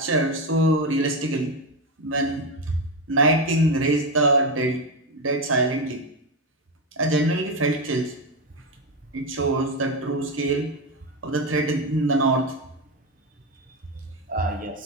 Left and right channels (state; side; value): normal; both; correlation 0.12